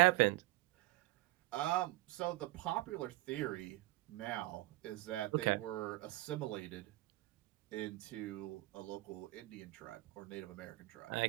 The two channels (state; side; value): quieter; left; 19.1 dB